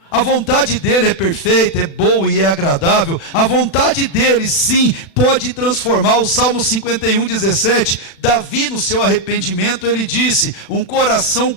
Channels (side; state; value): right; late; 36 ms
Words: A vontade dele é perfeita, é boa e é agradável. A vontade dele, sim, pode transformar. O Salmo 51:17, Davi, no seu arrependimento, ele disse: um coração